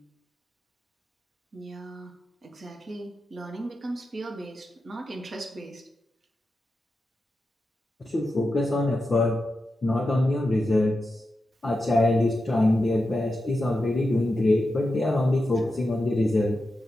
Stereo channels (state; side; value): normal; both; correlation 0.90